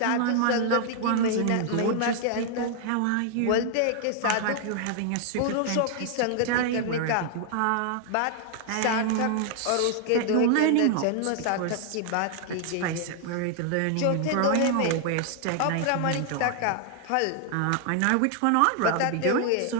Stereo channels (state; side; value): different; both; correlation 0.00